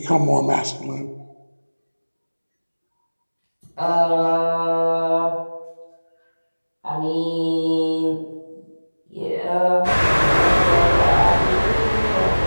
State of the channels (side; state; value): both; inverted; correlation -1.00